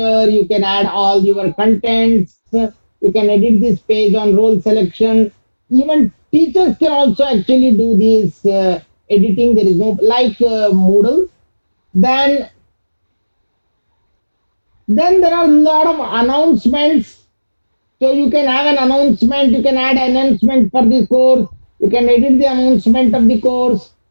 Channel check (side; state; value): both; inverted; correlation -1.00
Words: You can add all your contents. You can edit this page on role selection. Even teachers can also actually do this editing. There is no like Moodle. Then there are a lot of announcements. So you can have an announcement, you can add announcement for the course, you can edit the announcement of the course.